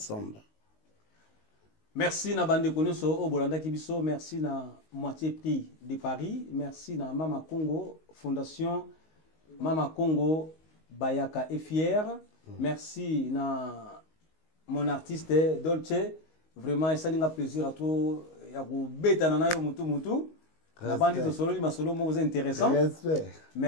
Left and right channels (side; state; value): right; late; 19 ms